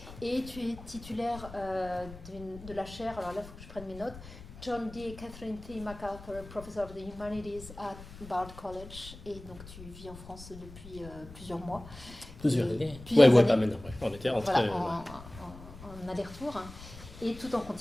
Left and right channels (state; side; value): noise; left; rumble, 15 dB below the sound